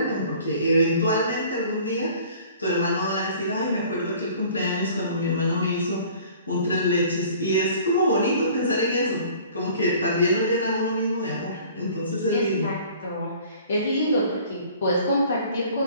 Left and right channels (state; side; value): inverted; both; correlation -0.50